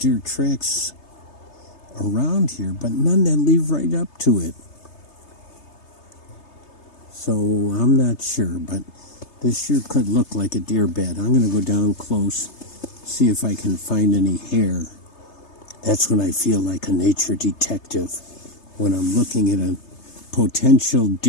tracks around here, but none that lead right up to it. So I'm not sure, but this sure could look like a deer bed. I'm going to go down close, see if I can find any hair. That's when I feel like a nature detective, when I'm looking at a potential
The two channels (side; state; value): right; late; 3.3 ms